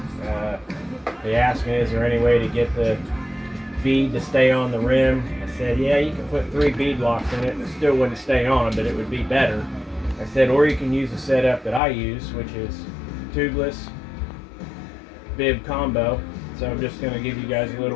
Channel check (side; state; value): right; drops out; at 11.8 s